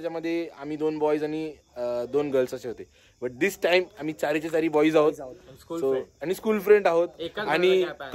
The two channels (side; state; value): both; identical; correlation 1.00